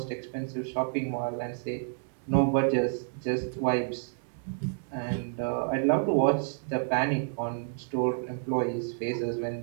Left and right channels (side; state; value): left; silent; 58 dB below the other